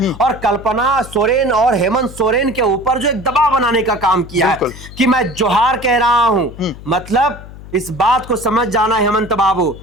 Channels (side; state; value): left; noise; hum, 16 dB below the sound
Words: और कल्पना सोरेन और हेमंत सोरेन के ऊपर जो एक दबाव बनाने का काम किया है कि मैं जोहार कह रहा हूं। मतलब इस बात को समझ जाना हेमंत बाबू